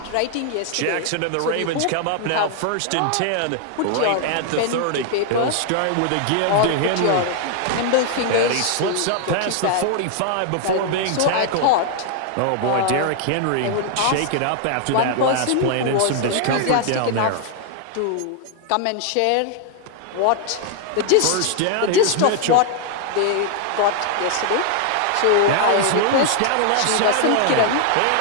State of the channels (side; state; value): both; different; correlation 0.00